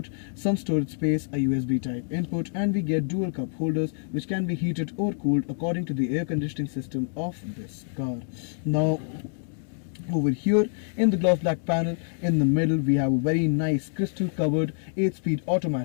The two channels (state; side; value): silent; right; 61 dB below the other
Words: some storage space, a USB type input, and we get dual cup holders which can be heated or cooled according to the air conditioning system of this car. Now over here in the gloss black panel in the middle we have a very nice crystal covered 8-speed